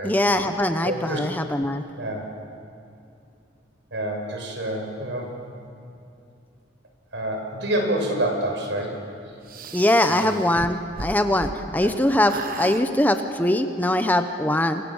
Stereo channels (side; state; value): both; normal; correlation 0.63